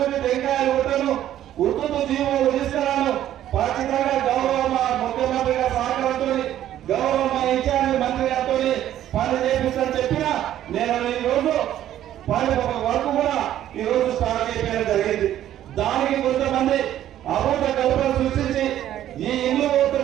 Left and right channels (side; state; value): left; quieter; 12.0 dB